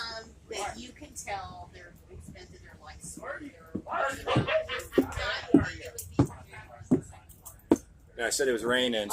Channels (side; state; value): both; identical; correlation 1.00